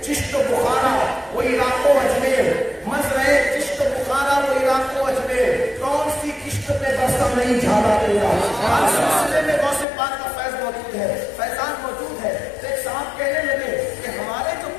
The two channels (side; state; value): right; drops out; at 9.9 s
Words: چشت و بخارا وہ عراق و اجمیر، مزرعے چشت و بخارا وہ عراق و اجمیر، کون سی کشت پہ برسا نہیں جھالا تیرا. ہر سلسلے میں غوث پاک کا فیض موجود ہے، فیضان موجود ہے. تو ایک صاحب کہنے لگے کہ ہمارے جو